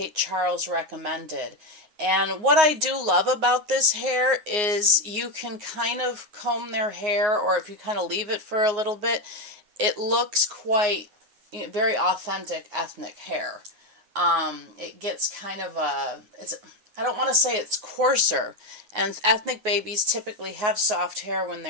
Charles recommended. And what I do love about this hair is you can kind of comb their hair, or if you kind of leave it for a little bit, it looks quite, very authentic ethnic hair. It gets kind of I don't want to say it's coarser, and ethnic babies typically have soft hair when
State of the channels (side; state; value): left; late; 9.5 ms